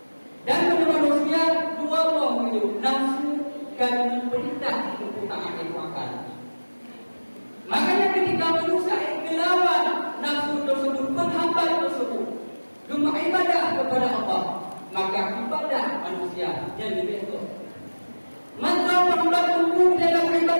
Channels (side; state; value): both; inverted; correlation -1.00